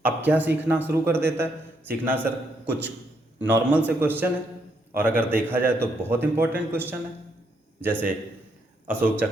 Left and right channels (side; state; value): both; normal; correlation 0.75